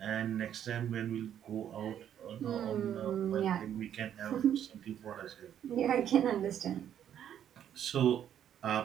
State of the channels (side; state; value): left; quieter; 9.9 dB